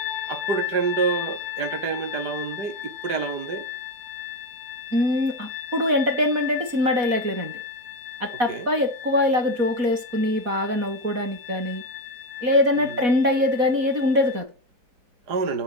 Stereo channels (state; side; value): late; left; 4.1 ms